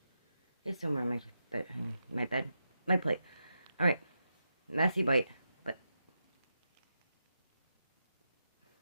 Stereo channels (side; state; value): both; inverted; correlation -0.87